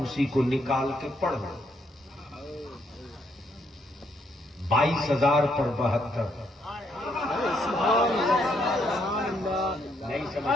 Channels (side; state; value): both; normal; correlation 0.74